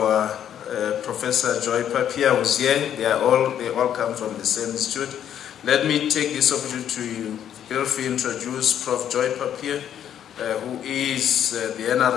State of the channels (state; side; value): quieter; right; 9.8 dB